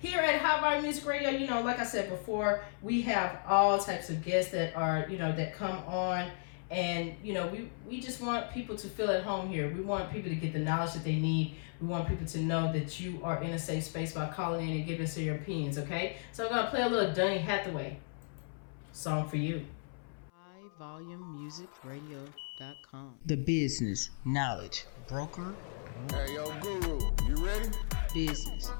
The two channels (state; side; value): silent; right; 55 dB below the other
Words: at Hot Bar Music Radio, you know, like I said before, we have all types of guests that are, you know, that come on, And we just want people to feel at home here. We want people to get the knowledge that they need. We want people to know that you are in a safe space by calling in and giving us your opinions, okay? So I'm gonna play a little Donny Hathaway song for you. HighVolumeMusicRadio.com. The business knowledge broker out. Hey, yo, Guru, you ready? Business,